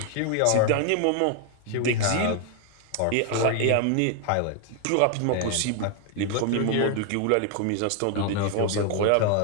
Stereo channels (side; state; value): both; different; correlation 0.01